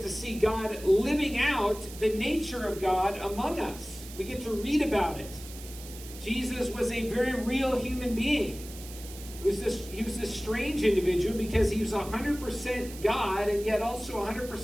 to see God living out the nature of God among us. We get to read about it. Jesus was a very real human being. He was this strange individual because he was 100% God and yet also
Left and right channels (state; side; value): noise; right; hiss, 15 dB below the sound